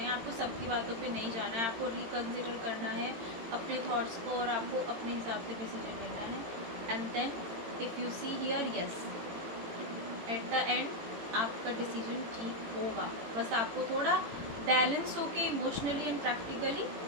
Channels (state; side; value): late; left; 18 ms